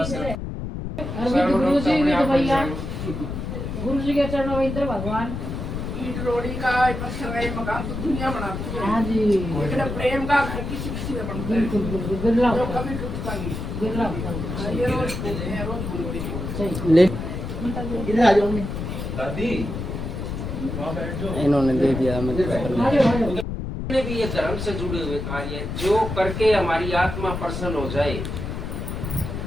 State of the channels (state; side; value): noise; left; rumble, 5 dB below the sound